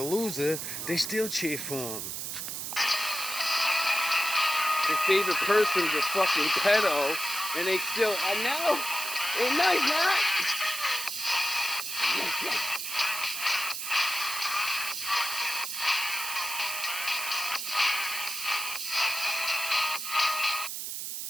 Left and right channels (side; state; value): right; noise; hiss, 5 dB below the sound